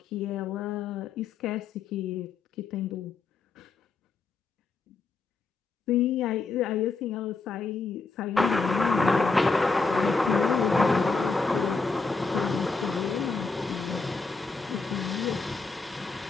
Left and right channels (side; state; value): right; quieter; 4.2 dB